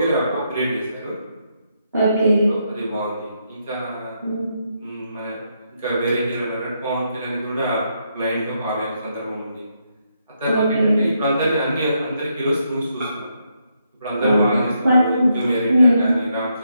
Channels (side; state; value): both; inverted; correlation -0.79